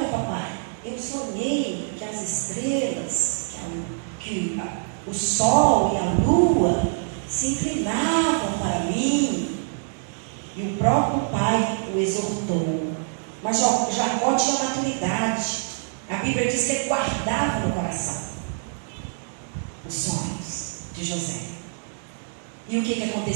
papai, eu sonhei que as estrelas, que o sol e a lua se inclinavam para mim. E o próprio pai o exortou. Mas Jacó tinha maturidade. A Bíblia diz que ele guardava no coração os sonhos de José. E o que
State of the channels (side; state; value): left; silent; digital silence